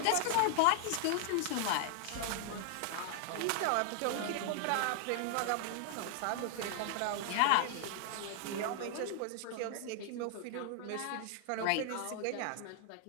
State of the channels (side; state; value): both; different; correlation 0.00